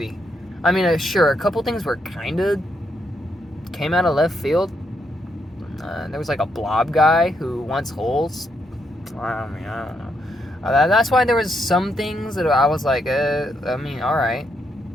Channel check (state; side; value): normal; both; correlation 0.78